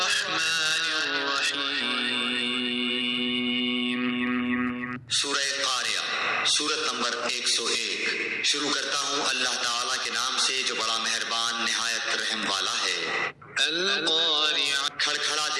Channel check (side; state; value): both; identical; correlation 1.00